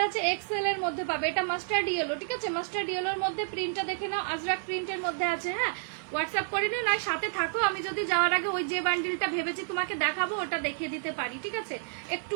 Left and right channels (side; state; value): left; silent; 55 dB below the other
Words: আছে, এক্সেল এর মধ্যে পাবে। এটা মাস্টার্ড ইয়েলো, ঠিক আছে? মাস্টার্ড ইয়েলোর মধ্যে প্রিন্টটা দেখে নাও, আজরাক প্রিন্টের মধ্যে আছে। হ্যাঁ, হোয়াটসঅ্যাপ করে নিও, নয় সাথে থাকো, আমি যদি যাওয়ার আগে ওই যে বান্ডিলটা ভেবেছি তোমাকে দেখাবো ওটা দেখিয়ে দিতে পারি, ঠিক আছে?